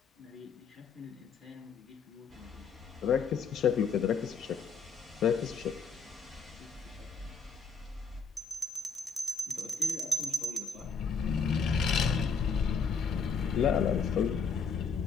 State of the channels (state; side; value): quieter; right; 5.5 dB